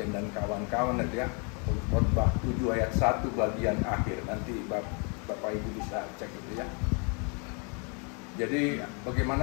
dan kawan-kawan ya, Khotbah 7 ayat 1 bagian akhir. Nanti Bapak Ibu bisa cek itu ya. Jadi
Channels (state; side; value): quieter; right; 35.7 dB